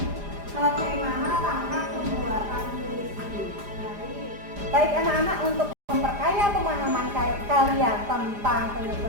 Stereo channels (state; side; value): late; left; 4.9 ms